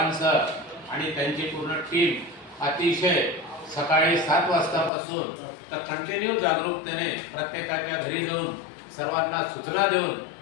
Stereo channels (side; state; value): right; drops out; at 4.9 s